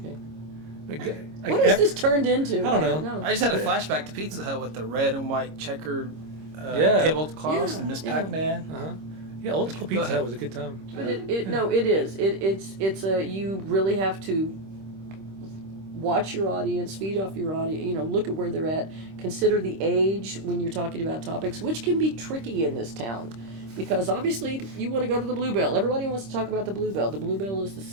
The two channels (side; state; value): left; late; 26 ms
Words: Like, What has this turned into? I don't know. I just had a flashback to Pizza Hut with the red and white checkered Yeah. tablecloths Yeah, and Miss yeah. Pac-Man. Uh-huh. Yeah, old school Go Pizza ahead. Hut was a good time. But it is. You really have to watch your audience, feed off your audience, look at where they're at, consider the age when you're talking about topics, which can be tricky in this town. Because obviously you want to go to the Bluebell. Everybody wants to talk about the Bluebell. The Bluebell is the